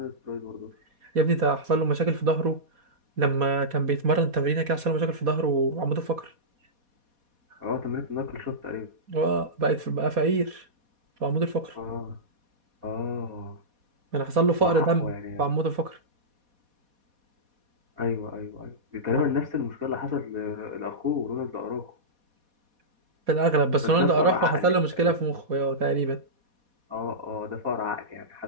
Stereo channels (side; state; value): left; late; 4.2 ms